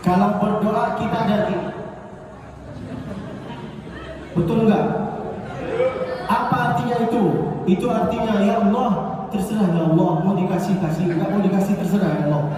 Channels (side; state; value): both; identical; correlation 1.00